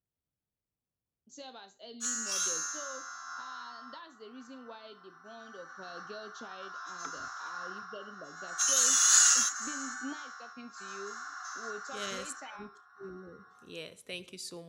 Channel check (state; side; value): identical; both; correlation 1.00